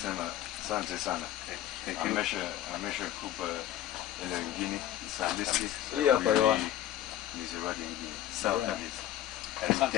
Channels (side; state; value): right; quieter; 12.6 dB